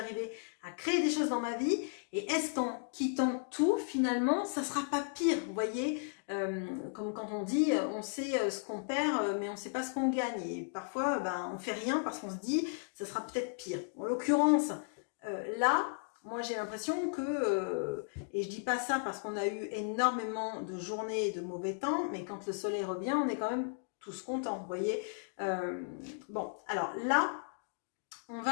à créer des choses dans ma vie. Et est-ce qu'en quittant tout, finalement, ça ne sera pas pire? Vous voyez, comme quand on dit, on sait ce qu'on perd, mais on ne sait pas ce qu'on gagne. Et parfois, on ne fait rien parce qu'on se dit, ça sera peut-être pire. En l'occurrence, là, moi j'ai l'impression que, et je dis pas ça parce qu'on a eu énormément de journées de mauvais temps, mais quand le soleil revient, on est quand même tous contents, vous voyez. Bon, alors là, on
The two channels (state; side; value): silent; right; digital silence